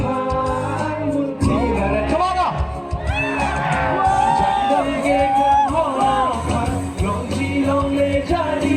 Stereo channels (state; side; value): identical; both; correlation 1.00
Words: Come on now. Jangan gekan hola, lonji longle